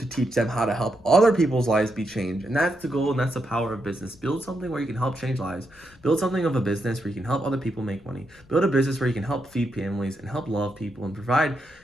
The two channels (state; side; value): noise; left; rumble, 27 dB below the sound